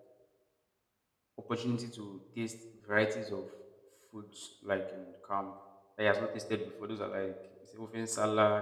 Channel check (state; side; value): identical; both; correlation 1.00